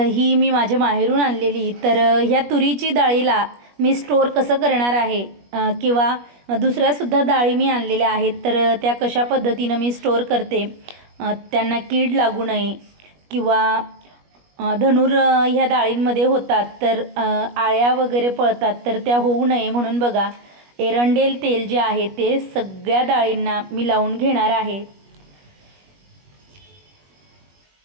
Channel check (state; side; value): late; left; 21 ms